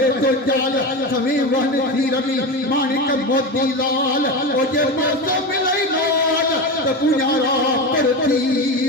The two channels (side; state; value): both; normal; correlation 0.21